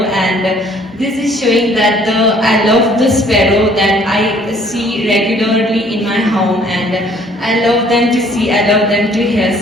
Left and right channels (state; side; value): normal; both; correlation 0.59